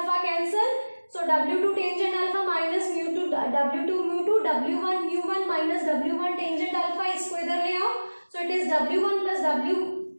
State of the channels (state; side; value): inverted; both; correlation -1.00